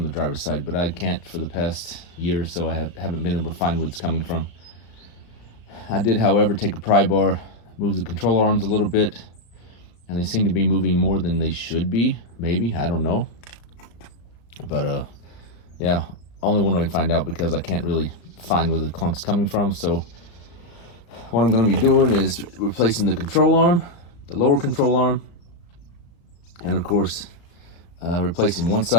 the driver's side, but I can't for the past year or so. I haven't been able to find where it's coming from. I did, however, take a pry bar, move the controller arms a little bit, and they seem to be moving more than they should be. Maybe, I don't know. But yeah, only one way to find out because I can't really find where the clunk's coming from. So what I'm going to be doing is replacing the control arm, the lower control arm, and of course replacing one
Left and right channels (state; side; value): late; right; 35 ms